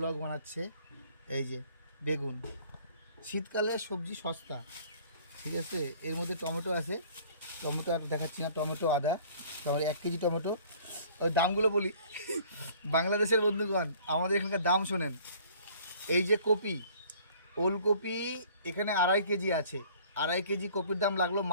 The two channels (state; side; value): inverted; both; correlation -0.52